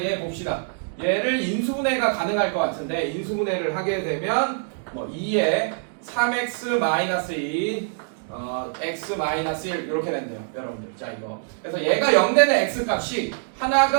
얘 봅시다. 얘를 인수분해가 가능할 것 같은데 인수분해를 하게 되면 뭐 2에 3x 마이너스 2 x 마이너스 1 이렇게 된대요 여러분들. 자 이거 그래서 얘가 0 되는 x 값이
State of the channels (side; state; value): left; silent; 62 dB below the other